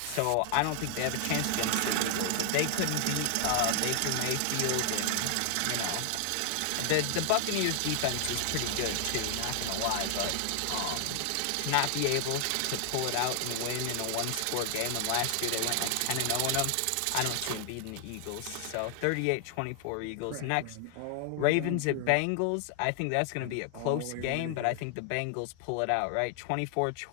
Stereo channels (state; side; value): different; both; correlation 0.00